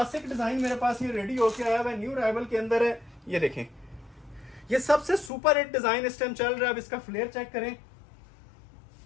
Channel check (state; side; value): drops out; right; at 5.3 s